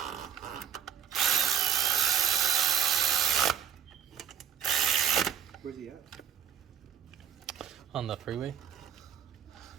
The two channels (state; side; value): quieter; left; 8.8 dB